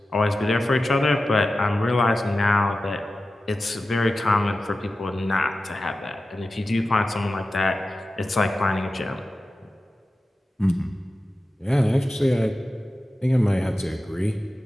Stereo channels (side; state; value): both; normal; correlation 0.94